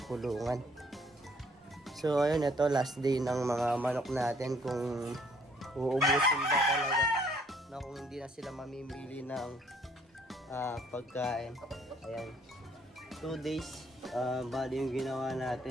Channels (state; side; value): normal; both; correlation 0.63